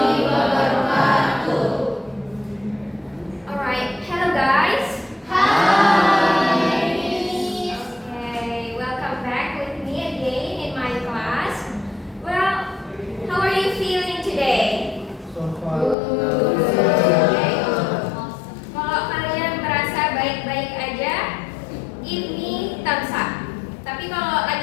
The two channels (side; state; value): right; drops out; at 16.0 s